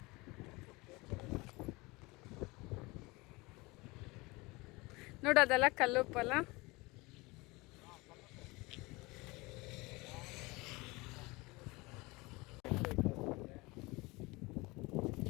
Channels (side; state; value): right; quieter; 23.8 dB